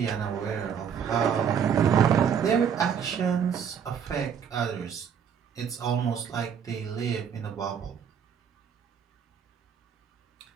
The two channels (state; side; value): quieter; left; 7.6 dB